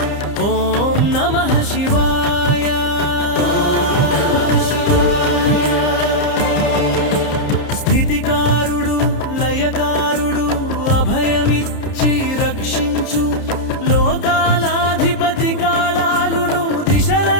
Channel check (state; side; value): late; right; 30 ms